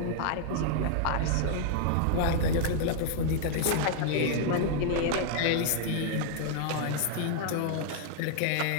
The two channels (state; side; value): different; both; correlation 0.00